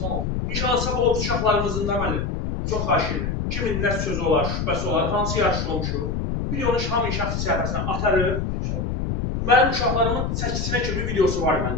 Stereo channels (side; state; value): left; noise; rumble, 2 dB below the sound